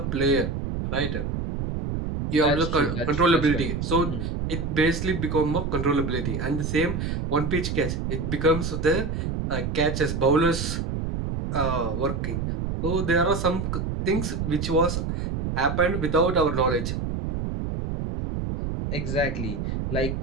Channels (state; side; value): noise; right; rumble, 3 dB below the sound